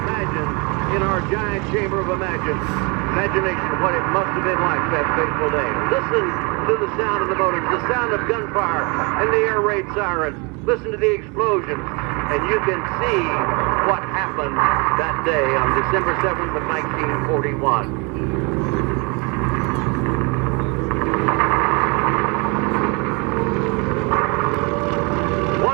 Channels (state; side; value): quieter; left; 30.3 dB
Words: in our giant chamber of imagination what it must have been like that fateful day. Listen to the sound of the motors, the sound of gunfire, and the air raid sirens. Listen to the explosions, and you can see what happened that day on December 7th of 1941.